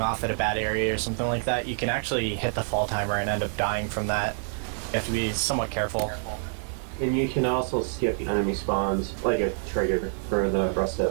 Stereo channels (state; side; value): silent; left; 60 dB below the other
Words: at a bad area or something like that, you can actually hit the fall timer and end up dying from that. You have to be somewhat careful. And you can also skip enemy spawns, like a trigger for the rest of